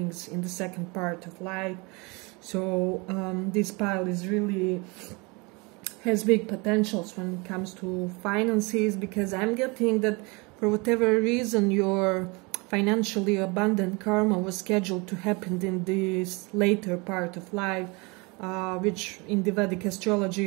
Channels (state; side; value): quieter; left; 27.8 dB